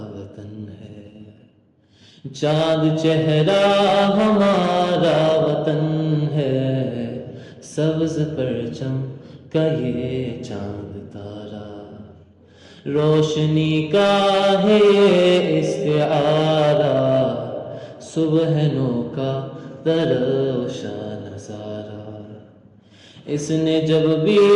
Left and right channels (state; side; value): identical; both; correlation 1.00